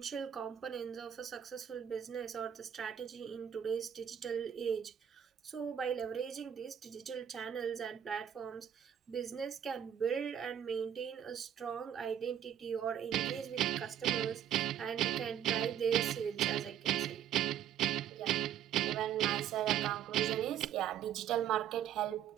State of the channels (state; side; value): quieter; left; 9.7 dB